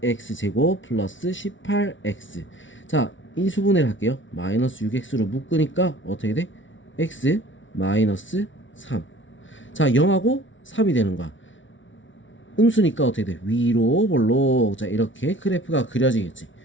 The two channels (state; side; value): late; right; 0.56 ms